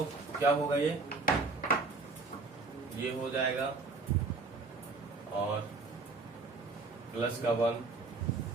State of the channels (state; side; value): quieter; left; 4.0 dB